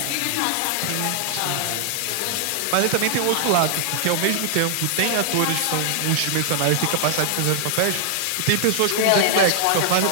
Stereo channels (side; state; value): both; different; correlation 0.00